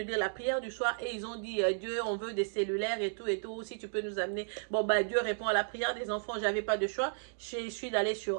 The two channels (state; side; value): silent; left; digital silence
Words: dire la prière du soir et ils ont dit, Dieu, on veut des cellulaires et tout, si tu peux nous amener. Bon, bah, Dieu répond à la prière des enfants, j'avais pas de choix. Je suis allée